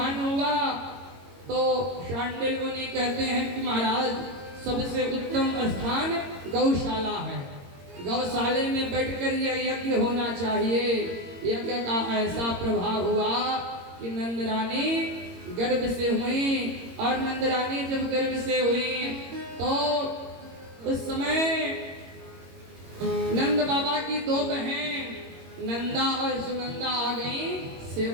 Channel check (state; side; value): late; left; 22 ms